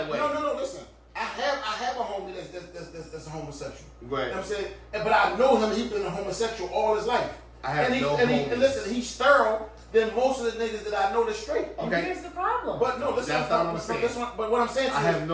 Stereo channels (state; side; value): identical; both; correlation 1.00